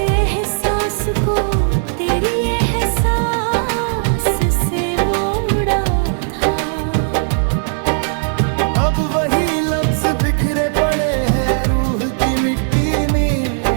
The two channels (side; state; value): left; silent; digital silence